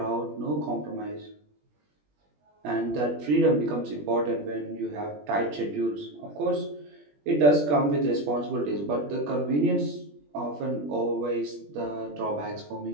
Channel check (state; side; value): late; left; 20 ms